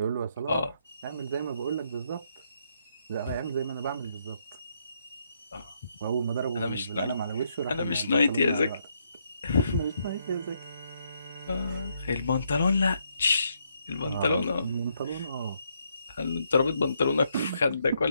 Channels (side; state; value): both; inverted; correlation -0.75